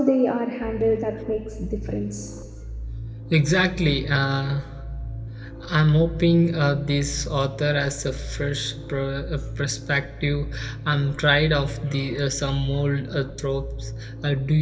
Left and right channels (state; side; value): identical; both; correlation 1.00